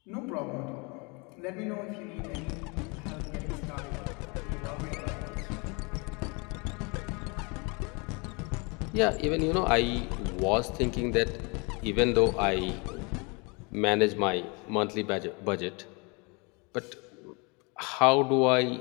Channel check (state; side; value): quieter; right; 30.4 dB